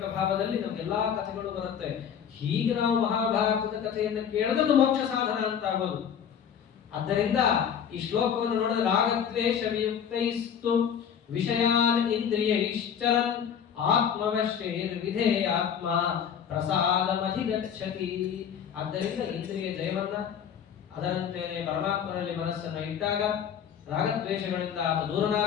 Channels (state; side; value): quieter; right; 8.2 dB